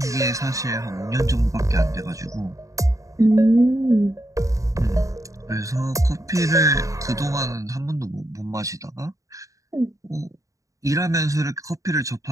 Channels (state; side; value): late; left; 0.16 ms